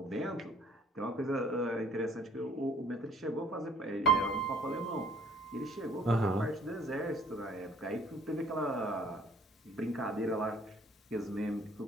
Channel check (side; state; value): both; normal; correlation 0.56